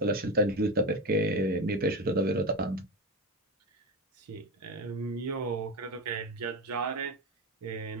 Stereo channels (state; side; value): normal; both; correlation 0.18